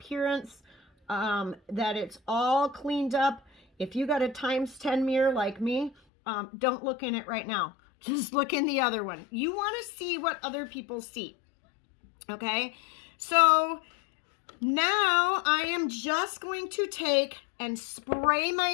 that it's all cleaned up. If you got a ×10 mirror like me, don't look in it right now. Just look in the other one. You want to see what other people see. Okay? So now I am just going to take and spray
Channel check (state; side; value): drops out; right; at 6.0 s